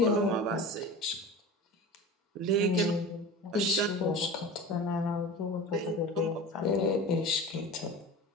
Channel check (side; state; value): both; normal; correlation 0.33